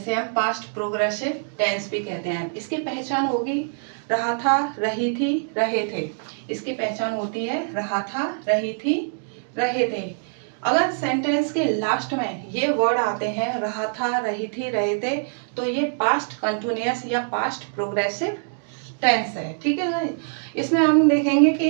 हम past progressive tense भी कहते हैं. इसकी पहचान होगी रहा था, रही थी, रहे थे. इसकी पहचान होती है रहा था, रही थी, रहे थे. अगर सेंटेंस के लास्ट में ये वर्ड आते हैं रहा था, रही थी, रहे थे, तो ये पास्ट कंटिन्यूअस या पास्ट प्रोग्रेसिव टेंस है. ठीक है गाइस? इसमें हम देखेंगे कि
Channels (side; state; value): left; silent; digital silence